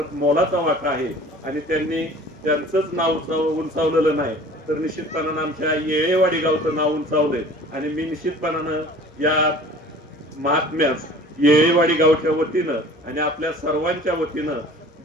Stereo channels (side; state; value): both; normal; correlation 0.46